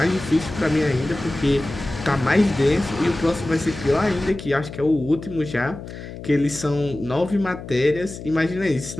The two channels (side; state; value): left; noise; hum, 12 dB below the sound